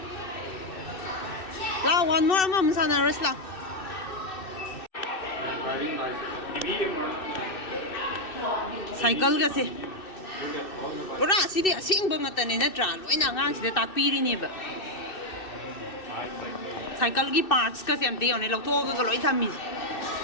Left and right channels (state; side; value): late; right; 2.6 ms